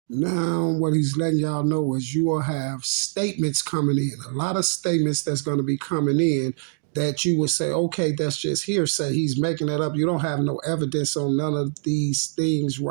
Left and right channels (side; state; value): left; silent; digital silence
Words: Now, what he's letting y'all know is you will have statements coming in, a lot of statements that's going to be coming in that you would say, okay, that's just hearsay. He's making that up. You don't have no evidence on none of these things